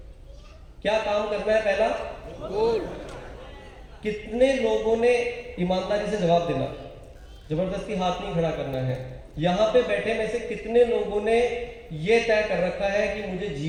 क्या काम करना है? पहला गोल। कितने लोगों ने ईमानदारी से जवाब देना, जबरदस्ती हाथ नहीं खड़ा करना है। यहां पे बैठे में से कितने लोगों ने यह तय कर रखा है कि मुझे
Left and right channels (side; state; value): both; identical; correlation 1.00